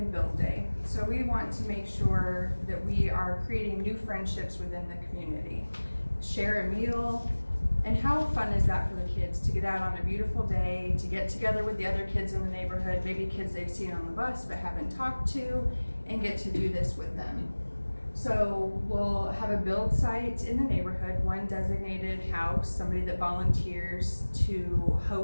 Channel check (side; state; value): both; inverted; correlation -1.00